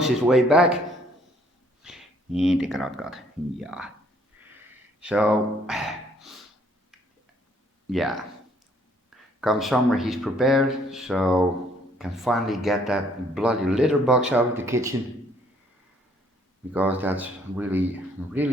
his way back. Inte karatkat. Yeah. So, yeah. Come summer, he's prepared, so can finally get that bloody litter box out of the kitchen, because that's really,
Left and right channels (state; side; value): normal; both; correlation 0.64